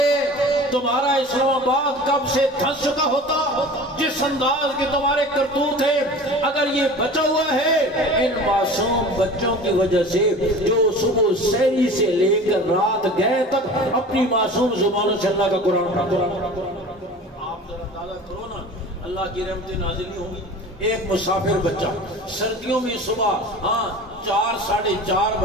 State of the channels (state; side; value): normal; both; correlation 0.39